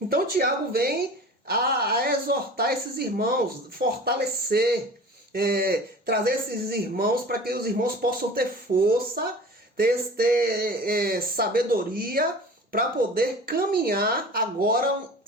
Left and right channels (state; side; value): normal; both; correlation 0.40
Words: Tiago vem a exortar esses irmãos, fortalecer, trazer esses irmãos para que os irmãos possam ter força, ter sabedoria para poder caminhar agora